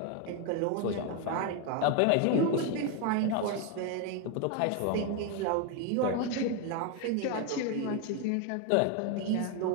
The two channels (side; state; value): both; different; correlation 0.01